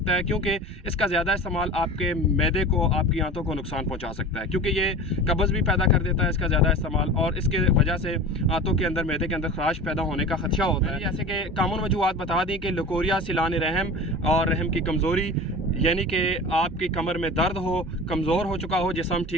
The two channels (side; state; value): both; normal; correlation 0.35